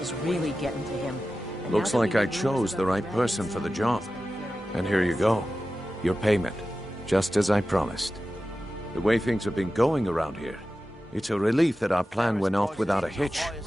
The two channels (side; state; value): both; normal; correlation 0.94